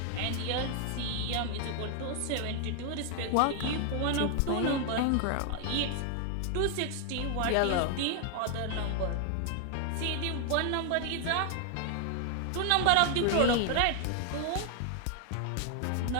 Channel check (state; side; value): different; both; correlation 0.00